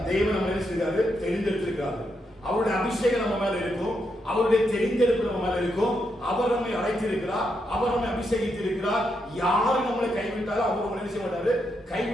தேவன் நம்ம என்ன செய்றாரு? தெரிந்தெடுத்திருக்கிறாரு. அவருடைய அபிஷேகம் நம்ம மேல இருக்கும், அவருடைய தெரிந்தெடுப்பு நம்ம மேல இருக்கும். அவர் நம்மை அழைத்திருக்கிறார், அவர் நம்மை அபிஷேகித்திருக்கிறார். யாரு நம்மளை கைவிட்டாலும் அவர் நம்மளை என்ன செய்ய மாட்டாரு?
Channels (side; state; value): both; normal; correlation 0.81